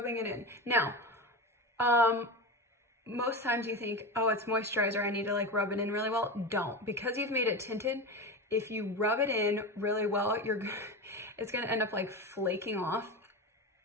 it in. Now, most times you think, oh, it's moisturizer, I need to like rub it in really well. Don't, because you've made it tinted. If you rub it in really well, it's gonna end up like flaking off.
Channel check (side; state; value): both; normal; correlation 0.23